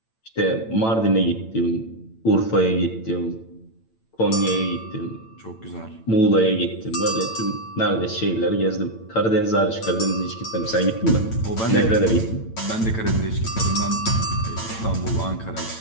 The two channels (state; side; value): late; right; 8.9 ms